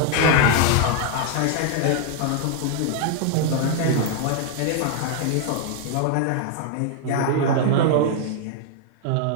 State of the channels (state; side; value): different; both; correlation 0.00